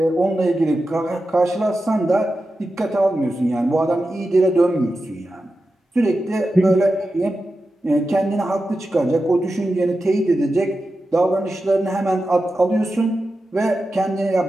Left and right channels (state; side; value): normal; both; correlation 0.91